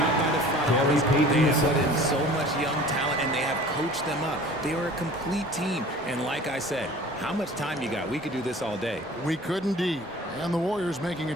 by the front office. They have put in so much young talent, and they have coached them up. They are a complete team. And like I said, how much time you got? We could do this all day. We could indeed. And the Warriors making a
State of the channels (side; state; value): both; normal; correlation 0.45